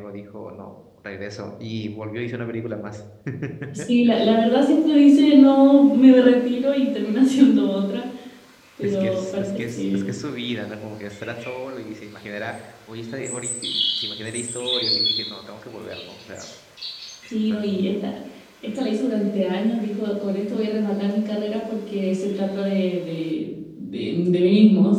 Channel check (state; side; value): identical; both; correlation 1.00